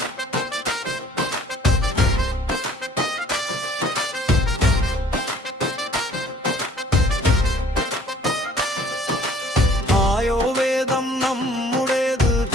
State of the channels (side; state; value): both; normal; correlation 0.55